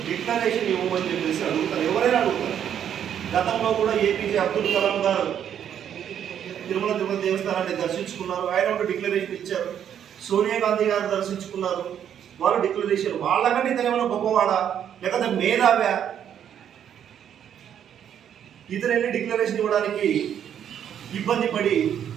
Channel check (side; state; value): left; quieter; 9.3 dB